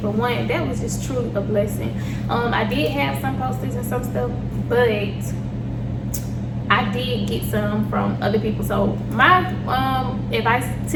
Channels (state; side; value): identical; both; correlation 1.00